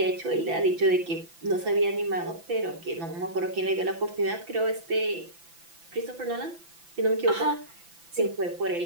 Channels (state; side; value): late; left; 5.9 ms